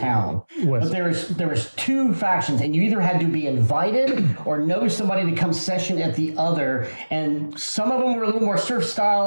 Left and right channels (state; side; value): inverted; both; correlation -1.00